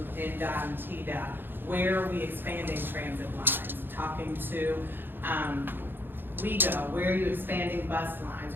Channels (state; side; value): late; left; 0.099 ms